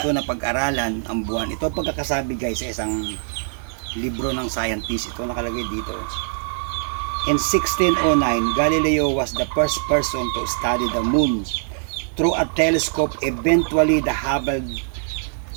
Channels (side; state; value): left; silent; digital silence